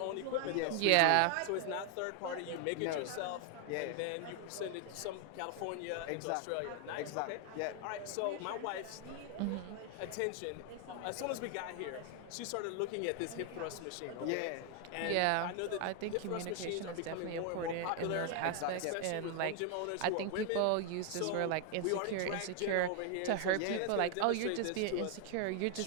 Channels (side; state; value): both; different; correlation 0.00